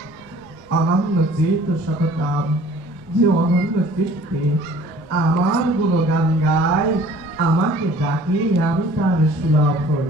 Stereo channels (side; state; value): both; normal; correlation 0.51